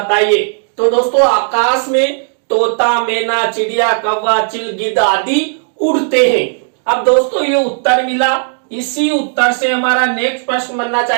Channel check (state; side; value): silent; left; digital silence